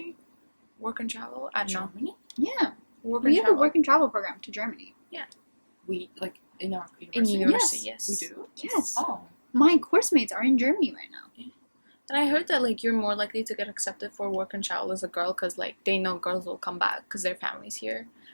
Work and travel? I don't know. Germany? Yeah, Work we and have travel. a work and travel program to Germany. We like in our In university? university, Yes. We yes. do? Yes. Oh. My course mates are in Germany right now. And I heard that like you're more likely to get accepted for work and travel as a girl because like they know girls will come back because their family's here,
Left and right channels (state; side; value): inverted; both; correlation -1.00